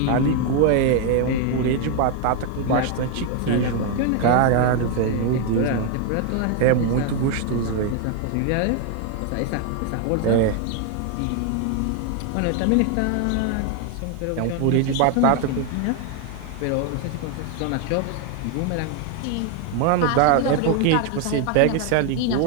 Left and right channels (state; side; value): different; both; correlation 0.01